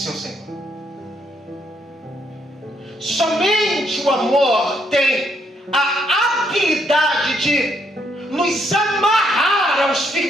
Senhor. Somente o amor tem a habilidade de nos amarrar aos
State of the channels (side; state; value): both; normal; correlation 0.74